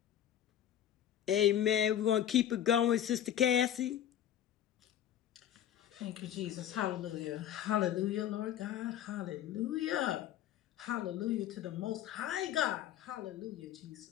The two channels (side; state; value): right; quieter; 10.9 dB